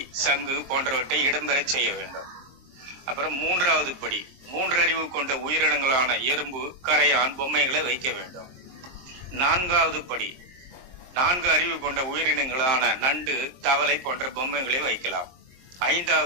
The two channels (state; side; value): late; left; 23 ms